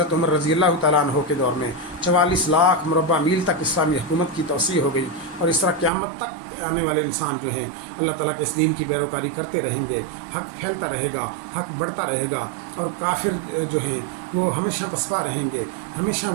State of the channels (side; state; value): left; drops out; at 5.9 s